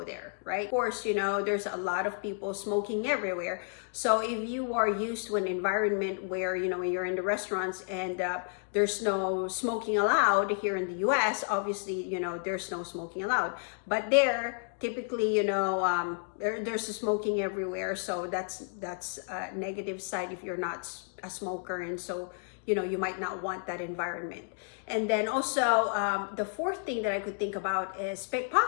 there, right? Of course, there's a lot of people smoking everywhere. So if you are used to an environment where, when you're in the restaurants and there's no smoking allowed here in the US, obviously, there's no smoking allowed. But there, typically, there's smoking everywhere. So that's a negative side if you're not a smoker. And so, you might not want that environment. And then also, the fourth thing that I could think about is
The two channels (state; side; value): silent; right; digital silence